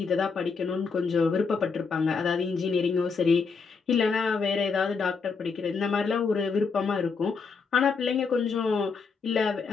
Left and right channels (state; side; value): quieter; right; 5.1 dB